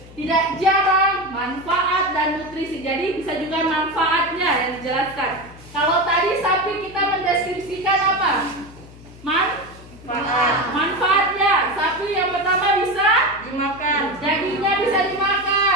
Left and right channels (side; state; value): left; noise; hum, 20 dB below the sound